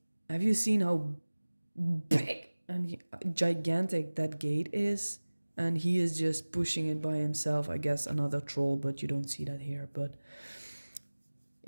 have you seen how big and gigantic that gate is? And he is just pushing it by himself. I guess another troll, but you don't see that here. But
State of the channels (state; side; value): inverted; both; correlation -1.00